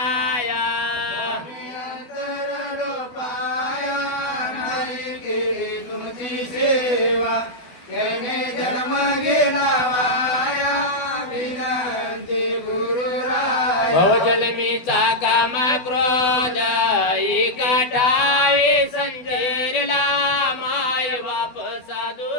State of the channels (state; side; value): late; right; 12 ms